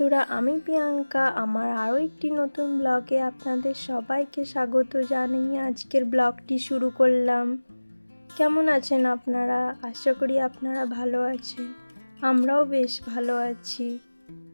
আমি প্রিয়াঙ্কা। আমার আরও একটি নতুন ব্লগে আপনাদের সবাইকে স্বাগত জানিয়ে আজকের ব্লগটি শুরু করলাম। কেমন আছেন আপনারা? আশা করি আপনারা ভালো আছেন। আমরাও বেশ ভালো আছি।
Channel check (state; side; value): inverted; both; correlation -1.00